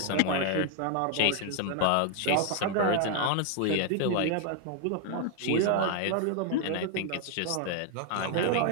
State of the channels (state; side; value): different; both; correlation 0.00